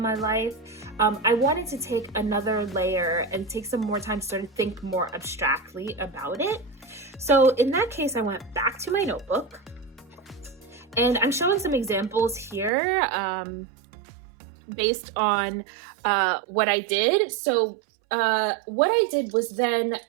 life. I wanted to take another layer and take some more time to sort of think more abstractly about it. So in that case, I went back to my notebook. And I'm showing some examples here based on what I did. So what I did was then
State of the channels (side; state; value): left; drops out; at 12.7 s